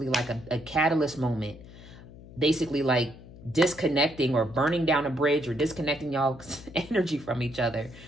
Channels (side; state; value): left; noise; hum, 18 dB below the sound